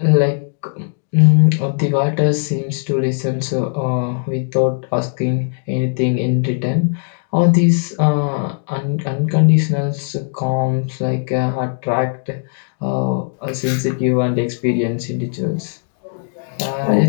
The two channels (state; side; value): silent; right; digital silence